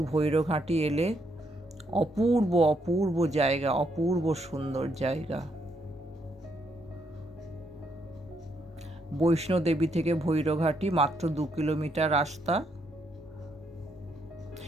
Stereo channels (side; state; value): both; normal; correlation 0.75